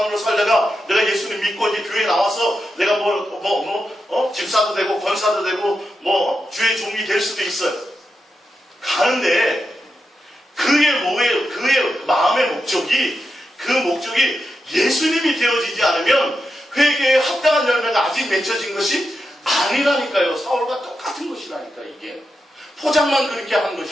살다가 내가 예수님 믿고 이제 교회에 나와서 내가 집사도 되고 권사도 되고 주의 종이 될 수도 있어요. 가는데 그의 마음의 목적이 예수님이 되어지지 않으면 회개에 합당한 열매가 아직 맺혀진 것이 아니라니까요. 사울과 똑같은 것이라니까. 이게 포장만 그렇게 한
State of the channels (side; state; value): both; normal; correlation 0.88